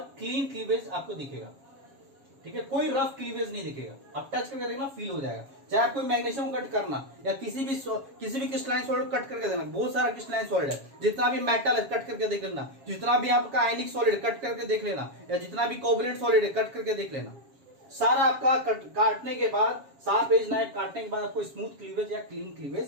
क्लीन क्लीवेज आपको दिखेगा। ठीक है, कोई रफ क्लीवेज नहीं दिखेगा, आप टच करके देखना फील हो जाएगा। चाहे आप कोई मैग्नीशियम कट करना या किसी भी क्रिस्टलाइन सॉलिड कट करके देखना, बहुत सारा क्रिस्टलाइन सॉलिड है, जितना भी मेटल है कट करके देख लेना, जितना भी आपका आयनिक सॉलिड कट करके देख लेना, या जितना भी कोवलेंट सॉलिड है कट करके देख लेना, सारा आपका काटने के बाद, शार्प एज नाइफ काटने के बाद आपको स्मूथ क्लीवेज या क्लीन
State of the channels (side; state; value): left; late; 7.3 ms